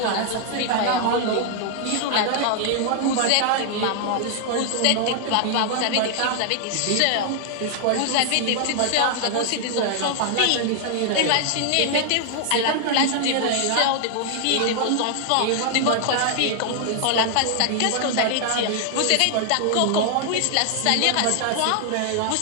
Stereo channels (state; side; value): different; both; correlation 0.00